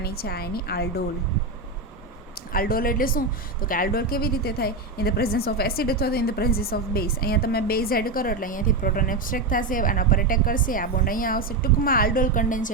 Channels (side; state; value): left; quieter; 3.3 dB